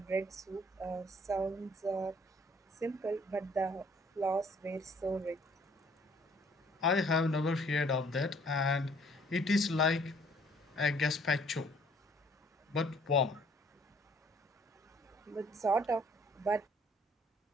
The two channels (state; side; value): normal; both; correlation 0.60